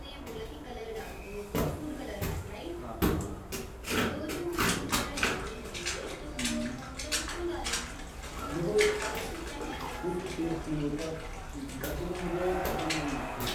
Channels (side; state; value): both; identical; correlation 1.00